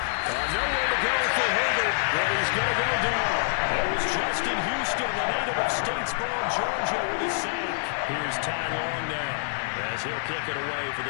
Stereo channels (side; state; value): right; silent; 60 dB below the other